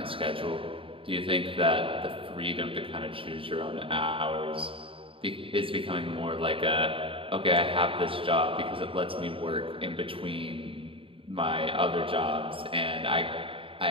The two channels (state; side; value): late; left; 0.26 ms